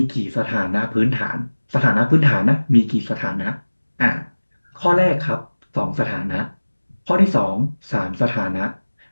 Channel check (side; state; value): both; inverted; correlation -1.00